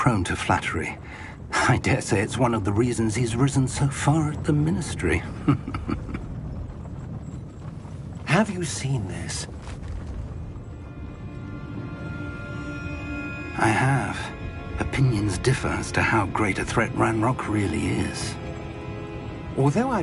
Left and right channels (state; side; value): identical; both; correlation 1.00